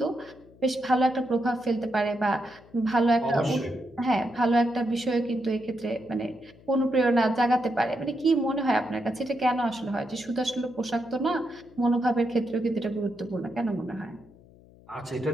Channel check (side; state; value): left; noise; hum, 25 dB below the sound